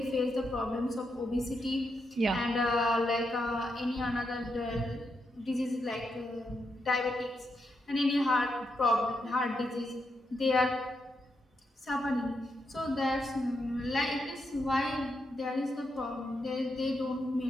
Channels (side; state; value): both; normal; correlation 0.83